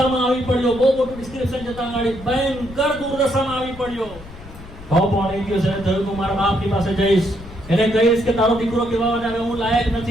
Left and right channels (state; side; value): noise; left; rumble, 17 dB below the sound